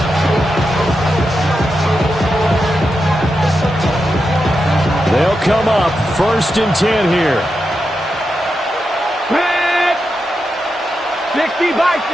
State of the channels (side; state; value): both; normal; correlation 0.87